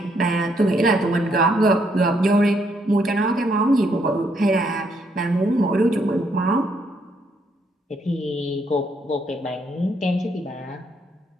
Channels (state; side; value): normal; both; correlation 0.73